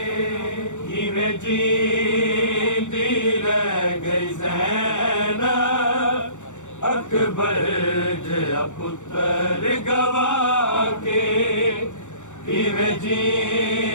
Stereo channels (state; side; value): late; right; 0.85 ms